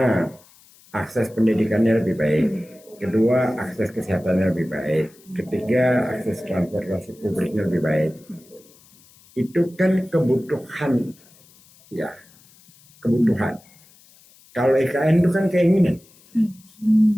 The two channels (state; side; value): noise; left; hiss, 27 dB below the sound